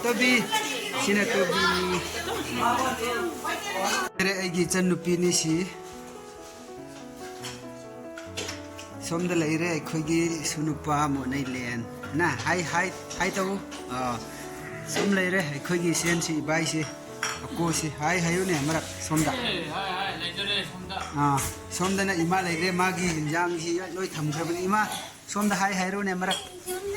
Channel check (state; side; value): identical; both; correlation 1.00